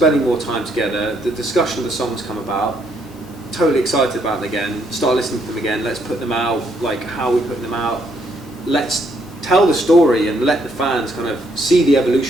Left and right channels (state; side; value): noise; left; hum, 28 dB below the sound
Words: more time together, the discussion of the songs come about, totally excited about them again, start listening to them again, let's put them out, like how we put them out, let's tell the story and let the fans kind of see the